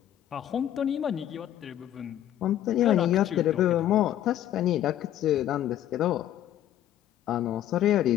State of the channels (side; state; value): right; quieter; 11.9 dB